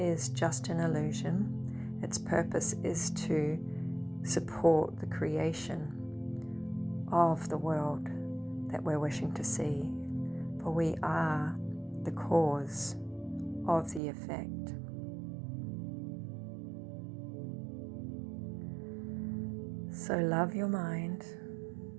just an illusion. Its purpose is to support the creation of the world that we're wishing to see, for we are the cause of the effect. So love your mind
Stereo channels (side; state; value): left; drops out; at 14.0 s